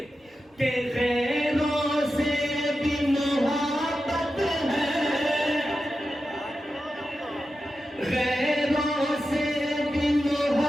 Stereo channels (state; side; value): normal; both; correlation 0.91